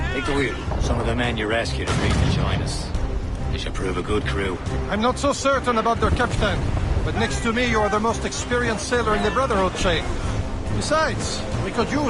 Take the wheel. Some of the men you rescued agreed to join us. They should prove a good crew. I'm not so certain about their captain, but next to me you are the most experienced sailor in the Brotherhood, Shay. Besides, we could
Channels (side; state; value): both; identical; correlation 1.00